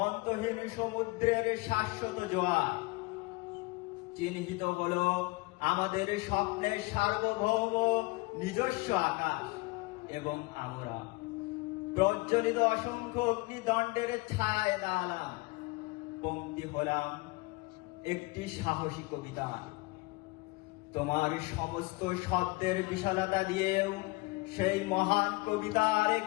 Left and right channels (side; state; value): right; quieter; 24.9 dB